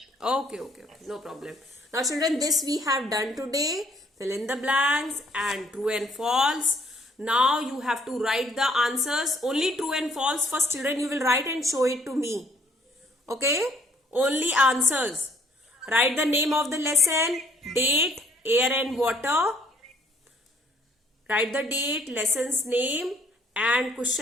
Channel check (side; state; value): both; normal; correlation 0.63